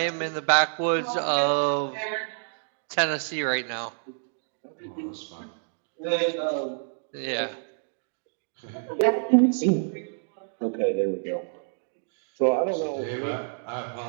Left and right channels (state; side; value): silent; left; digital silence